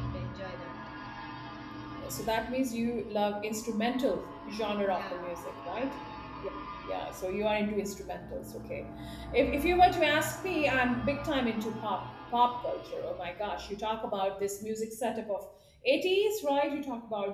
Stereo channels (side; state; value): both; identical; correlation 1.00